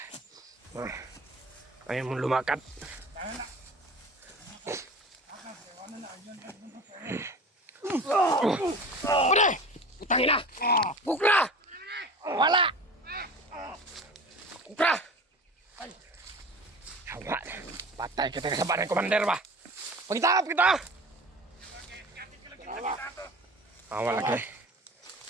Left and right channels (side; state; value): both; normal; correlation 0.37